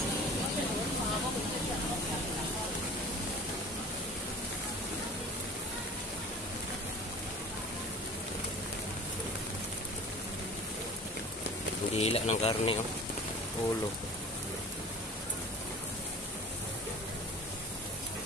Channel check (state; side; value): normal; both; correlation 0.40